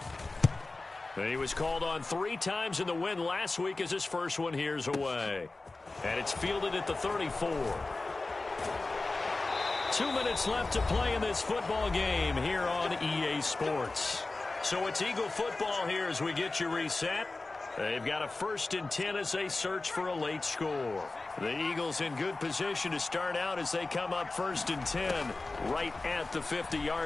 He was called on 3 times in the win last week as his first one here's away. And it's fielded at the 34. 2 minutes left to play in this football game here on EA Sports. So it's Eagle football here as we get you reset. They've got a 1st and 10 as they search for a late score. The Eagles in good position to start out as they come up 1st and 10 right at the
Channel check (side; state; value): right; quieter; 3.3 dB